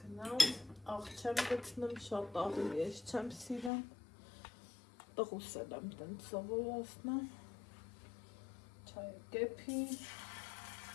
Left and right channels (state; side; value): drops out; right; at 3.7 s